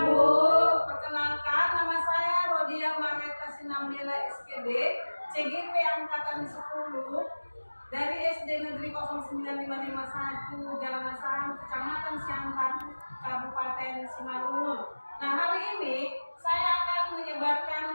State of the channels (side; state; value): both; inverted; correlation -1.00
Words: Bu. Perkenalkan, nama saya Rodia Mareta Sinambela SPD, CGP Angkatan 10 dari SD Negeri 09551 Jalan Asahan, Kecamatan Siantar, Kabupaten Simalungun. Nah, hari ini saya akan